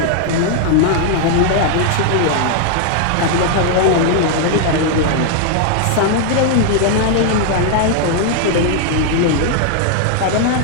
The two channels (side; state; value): both; different; correlation 0.00